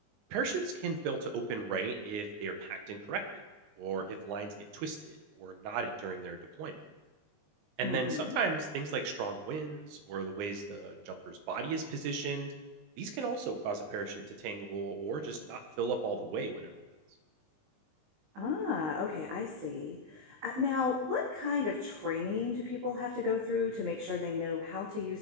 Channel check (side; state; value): left; late; 19 ms